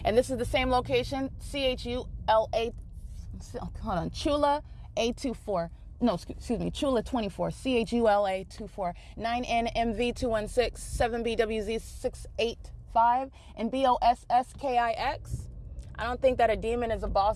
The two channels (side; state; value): both; identical; correlation 1.00